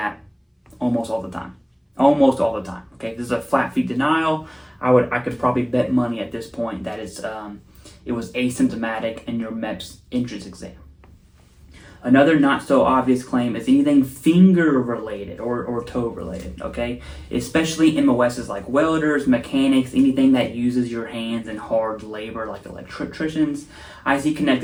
almost all the time. Almost all the time. Okay, this is a flat feet denial. I could probably bet money at this point that it was asymptomatic in your MEPS entrance exam. Another not so obvious claim is anything finger related or toe related, okay? Especially MOSs like welders, mechanics, anything that uses your hands in hard labor like electricians. I see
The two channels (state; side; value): identical; both; correlation 1.00